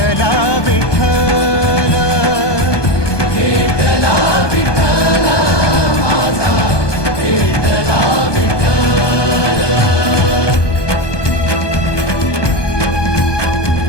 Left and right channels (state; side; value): late; right; 1.2 ms